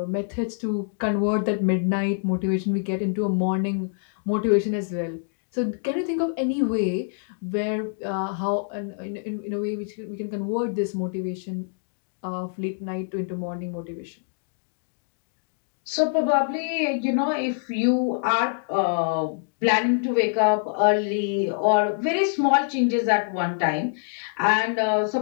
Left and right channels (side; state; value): right; silent; digital silence